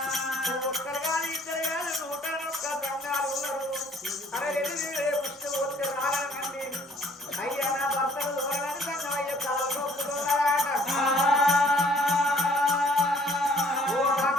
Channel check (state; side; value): normal; both; correlation 0.59